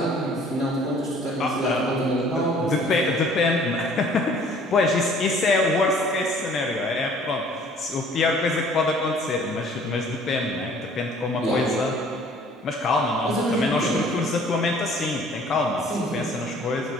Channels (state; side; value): normal; both; correlation 0.54